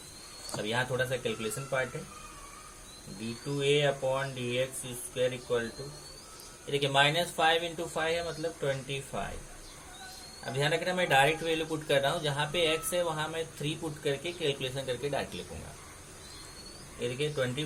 अब यहाँ थोड़ा सा कैलकुलेशन पार्ट है। d2a upon dx square equal to, देखिए -5 इंटू 5 है मतलब 25। अब ध्यान रखना मैं डायरेक्ट वैल्यू पुट कर रहा हूँ, जहाँ पे x है वहाँ मैं 3 पुट करके कैलकुलेशन करके डायरेक्ट लिखूंगा। ये देखिए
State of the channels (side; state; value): both; identical; correlation 1.00